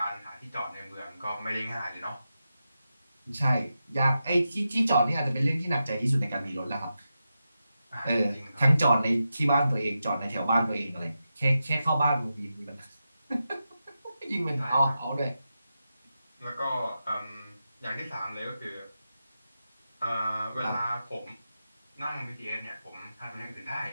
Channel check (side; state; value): both; inverted; correlation -0.89